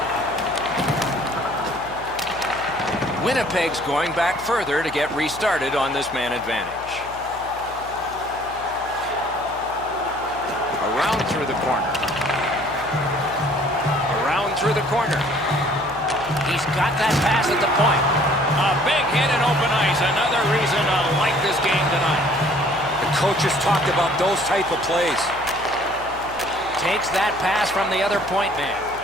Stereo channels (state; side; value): noise; left; hum, 19 dB below the sound